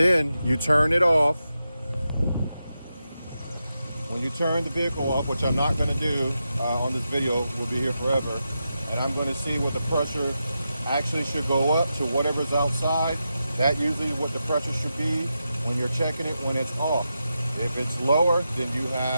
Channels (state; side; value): inverted; both; correlation -0.88